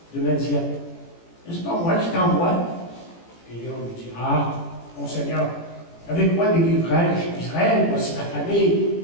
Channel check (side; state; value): right; late; 18 ms